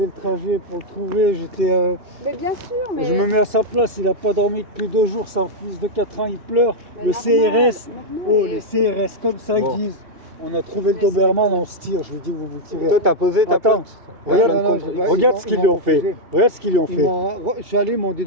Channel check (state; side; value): late; left; 2.7 ms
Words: le trajet pour le trouver, j'étais... Mais bien sûr, mais... Je me mets à sa place, il a pas dormi depuis 2 jours, son fils de 4 ans, il pleure. mais Le normal, CRS, normal. oh, Et- les CRS, comme ça, Bon. ils disent. On a trouvé le Mais c'est- Doberman, on se tire. Je lui dis, vous vous tirez. Toi, t'as posé ta Attends. plainte. Regarde, non, non, bah, regarde ils ce qu'ils m'ont lui ont fait. refusé. Regarde ce qu'ils lui ont Ils fait. je suis allé, ils m'ont dit